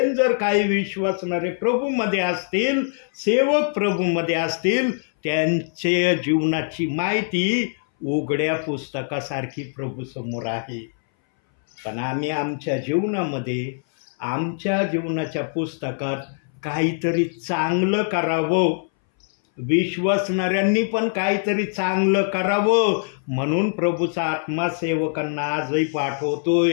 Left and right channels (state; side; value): silent; right; 61 dB below the other